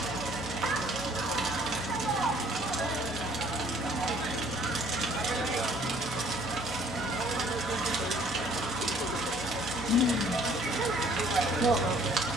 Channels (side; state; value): both; normal; correlation 0.59